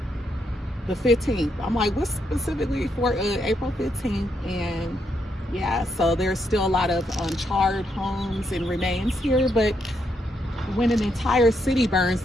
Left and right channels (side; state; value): both; normal; correlation 0.78